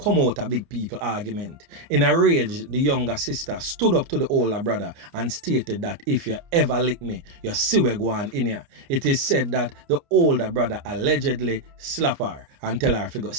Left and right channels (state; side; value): late; left; 29 ms